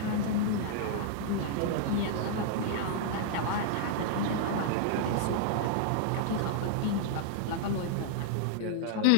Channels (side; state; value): both; different; correlation -0.01